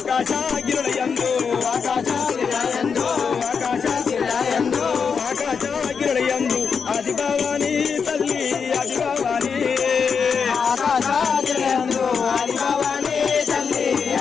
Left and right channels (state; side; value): quieter; right; 6.0 dB